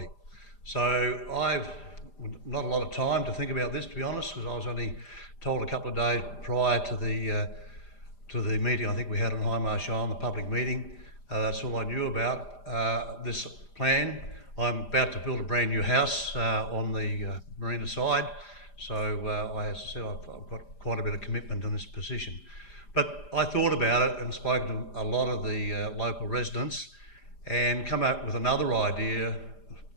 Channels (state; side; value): late; right; 5.0 ms